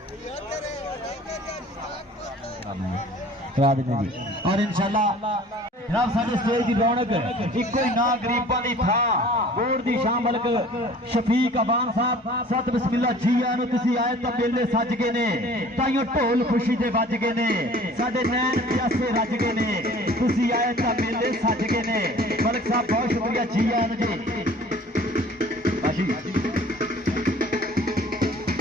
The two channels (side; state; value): both; normal; correlation 0.48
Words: करा देने जी और इंशाल्लाह जनाब साडे स्टेज की रौनक इको ही ना गरीबां दी थां बोर्ड दी शाम मलक शफीक अबान साहब सत बिस्मिल्लाह जी आनो तुसी आए तां मेले सज गए ने ताइयों ढोल खुशी दे वज गए ने साडे नैन प्यासे रज गए ने तुसी आए तां मेले सज गए ने मलक साहब बहुत शुक्रिया जी आनो जी